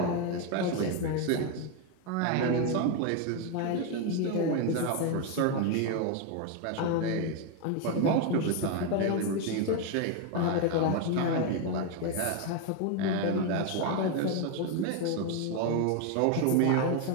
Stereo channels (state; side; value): different; both; correlation 0.02